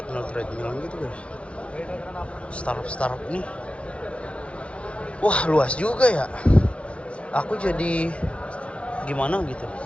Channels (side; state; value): right; late; 0.061 ms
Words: gitu guys. Startup ini. Wah, luas juga ya. Aku jadi gimana gitu.